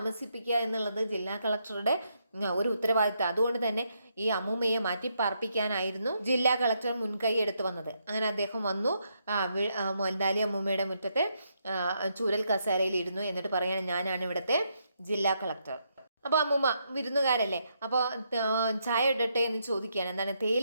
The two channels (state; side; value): inverted; both; correlation -0.78